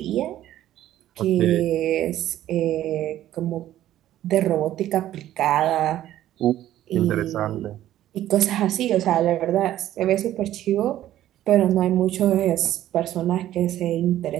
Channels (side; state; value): left; quieter; 13.0 dB